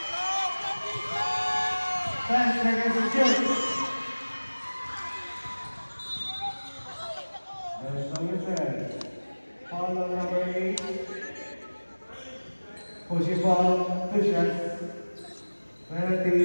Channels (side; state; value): both; inverted; correlation -1.00